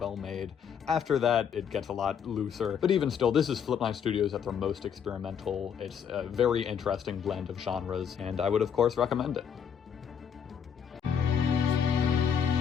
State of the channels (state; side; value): quieter; right; 7.7 dB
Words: made. After that, it gets a lot looser, but even still, this is Flip9 Studios at their most experimental. It's a very interesting blend of genres, and I would of course recommend it.